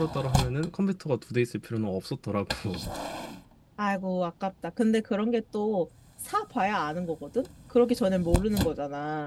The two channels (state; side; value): identical; both; correlation 1.00